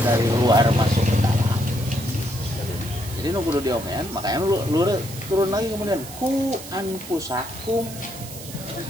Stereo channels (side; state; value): right; noise; hiss, 14 dB below the sound